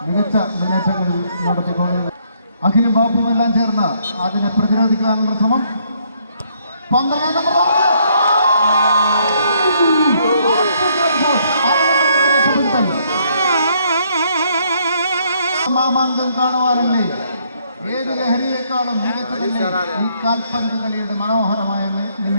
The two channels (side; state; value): both; inverted; correlation -0.69